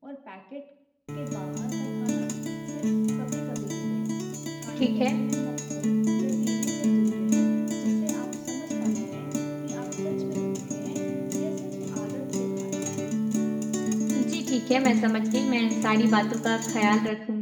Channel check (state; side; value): identical; both; correlation 1.00